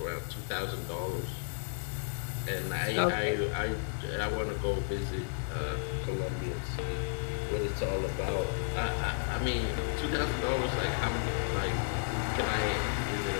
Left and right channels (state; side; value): silent; right; digital silence